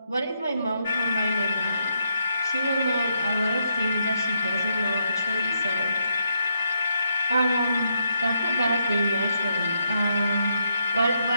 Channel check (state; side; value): inverted; both; correlation -0.79